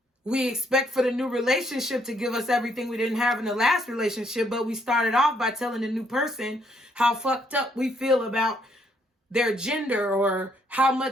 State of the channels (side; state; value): both; normal; correlation 0.71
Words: We expect for the new relationship to give us everything we didn't have in the last relationship, but we started off by telling the new person how fucked up we feel about their gender, or how